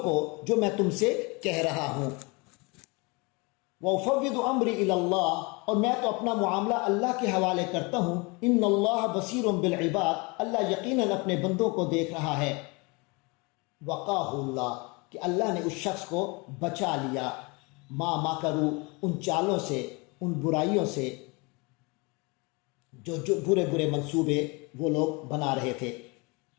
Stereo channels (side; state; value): right; quieter; 28.3 dB